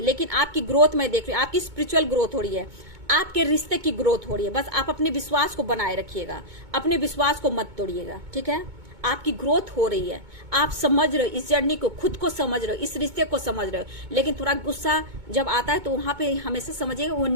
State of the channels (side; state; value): left; late; 2.2 ms